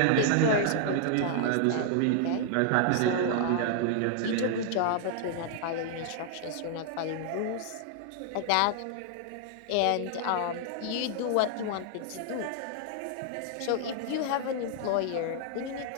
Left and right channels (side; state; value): both; different; correlation 0.00